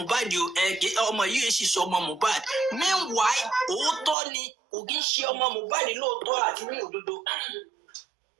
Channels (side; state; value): left; drops out; at 4.2 s